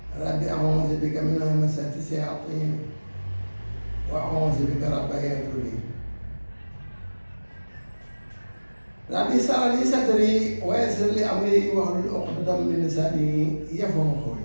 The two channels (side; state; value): both; inverted; correlation -1.00